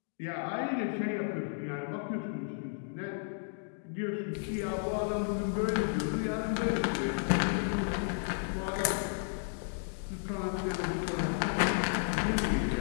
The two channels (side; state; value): right; silent; digital silence